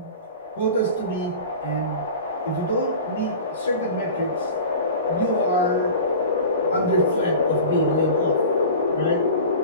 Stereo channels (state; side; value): inverted; both; correlation -0.36